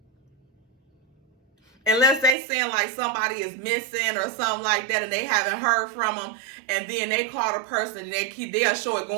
unless they saying like somebody is missing or something like that and they haven't heard from them, and then they call the person and they'll show it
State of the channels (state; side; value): drops out; left; at 2.4 s